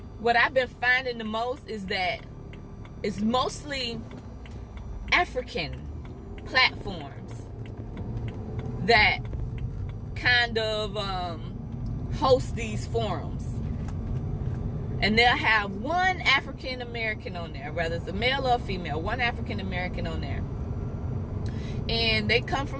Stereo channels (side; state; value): both; identical; correlation 1.00